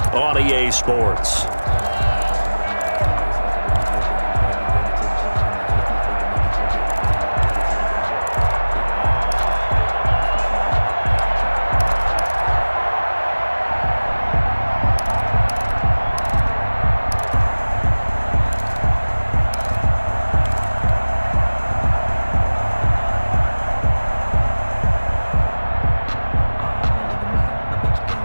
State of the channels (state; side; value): inverted; both; correlation -1.00